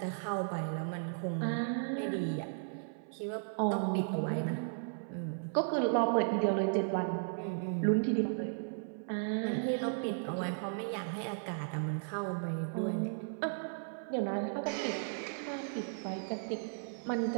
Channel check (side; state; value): left; silent; 54 dB below the other